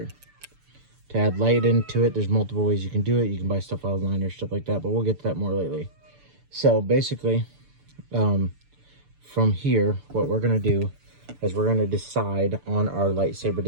To add light into it, there's multiple ways you can do it. You can buy stuff online or stuff like that, but we'll get to that more lately. So basically, from here, what we're going to do is we're going to decide on our lightsaber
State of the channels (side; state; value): left; late; 6.9 ms